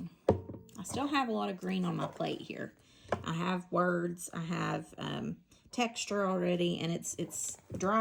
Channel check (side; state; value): both; identical; correlation 1.00